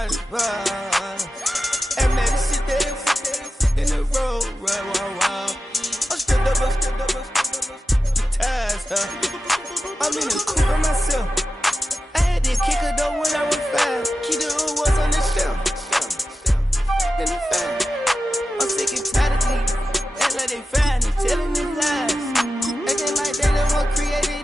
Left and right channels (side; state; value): both; normal; correlation 0.93